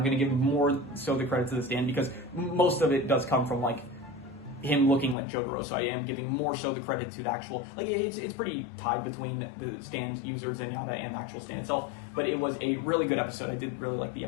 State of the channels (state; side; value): drops out; right; at 5.2 s